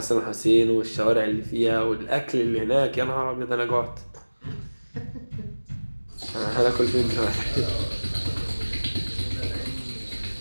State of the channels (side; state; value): both; inverted; correlation -1.00